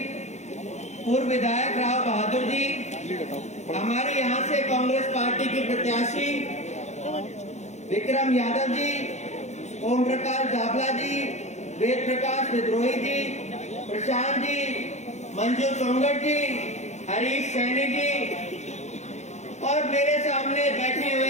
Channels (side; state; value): right; late; 0.33 ms